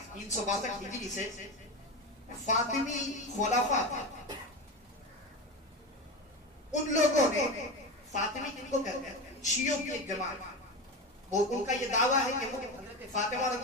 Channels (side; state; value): both; normal; correlation 0.22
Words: 362 ہجری سے فاطمی خلافہ تھے، ان لوگوں نے، فاطمی کن کو کہتے ہیں؟ شیعوں کی ایک جماعت، وہ ان کا یہ دعویٰ ہے کہ وہ حضرت فاطمہ